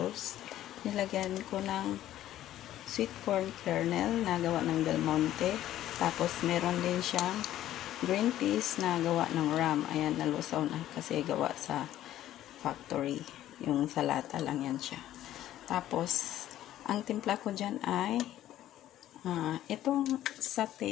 Nilagyan ko ng sweet corn kernel na gawa ng Del Monte. Tapos meron din siyang green peas na gawa ng ram. Ayan, nalusaw na kasi gawa sa factory. Yung salata lang yan siya. Tapos ang timpla ko dyan ay itong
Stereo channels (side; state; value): right; quieter; 13.0 dB